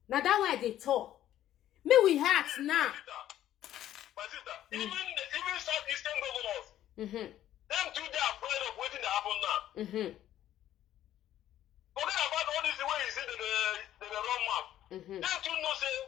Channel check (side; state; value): right; quieter; 12.3 dB